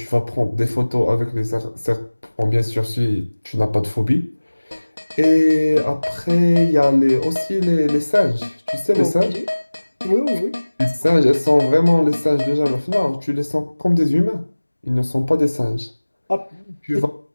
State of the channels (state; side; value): inverted; both; correlation -1.00